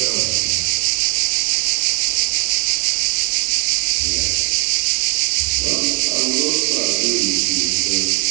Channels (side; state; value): left; quieter; 31.9 dB